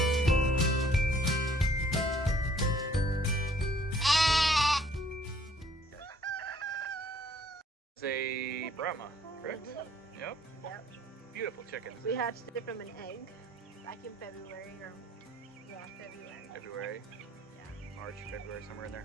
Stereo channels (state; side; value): normal; both; correlation 0.61